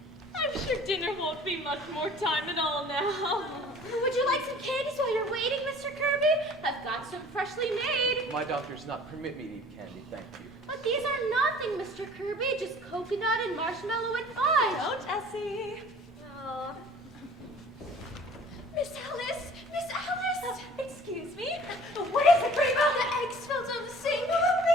I'm sure dinner won't be much more time at all now. Would you like some candies while you're waiting, Mr. Kirby? I've got some freshly made. My doctor does not permit me to eat candy, thank you. But these are nothing, Mr. Kirby. Just coconut and marshmallow and fudge. Don't, Essie. Oh. Miss Alice! Miss Alice! Excuse me? What is it, Rheba? The eggs fell down the sink.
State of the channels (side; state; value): both; normal; correlation 0.49